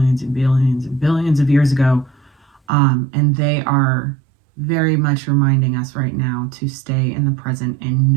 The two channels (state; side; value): drops out; left; at 2.6 s